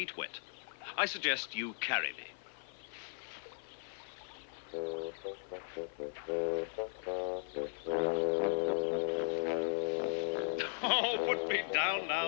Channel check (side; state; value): right; silent; 53 dB below the other